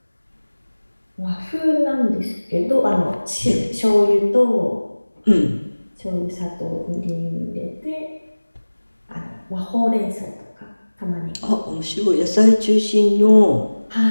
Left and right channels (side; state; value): both; inverted; correlation -1.00